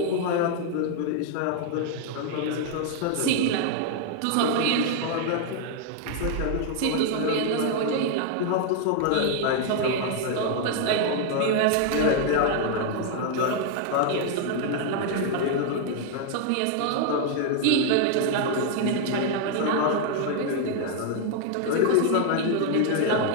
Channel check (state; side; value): different; both; correlation 0.00